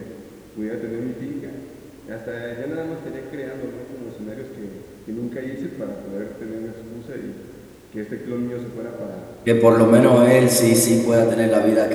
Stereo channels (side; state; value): both; identical; correlation 1.00